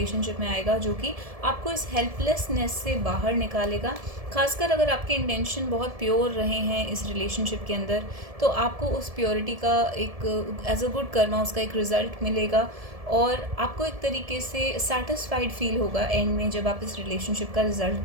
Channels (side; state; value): left; late; 1.7 ms